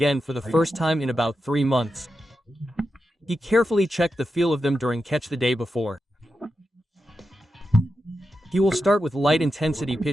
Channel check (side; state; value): both; normal; correlation 0.89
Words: for the first time in about 3 months. He carefully checked the feel of them during catch the day before. He will start with light-intensity